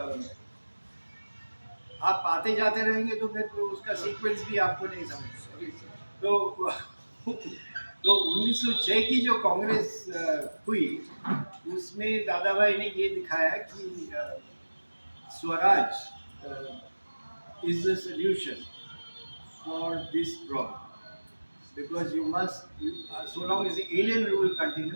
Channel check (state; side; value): inverted; both; correlation -1.00